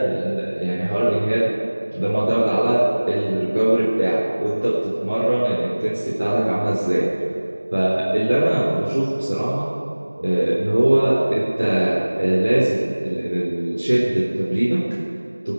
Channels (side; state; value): both; inverted; correlation -1.00